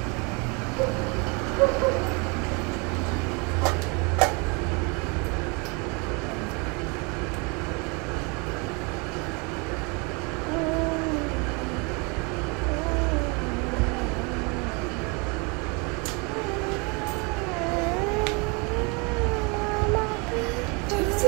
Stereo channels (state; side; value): quieter; left; 31.0 dB